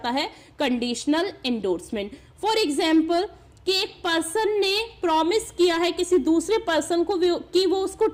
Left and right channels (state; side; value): identical; both; correlation 1.00